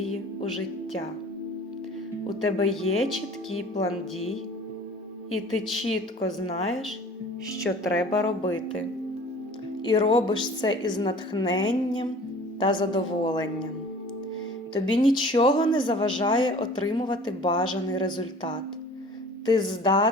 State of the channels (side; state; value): both; normal; correlation 0.46